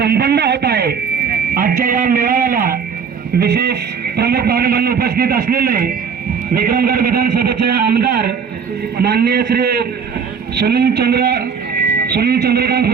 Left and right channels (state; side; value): quieter; left; 6.5 dB